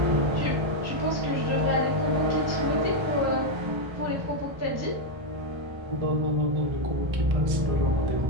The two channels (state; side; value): late; left; 1.3 ms